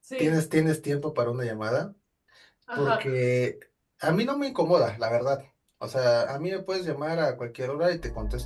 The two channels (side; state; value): both; identical; correlation 1.00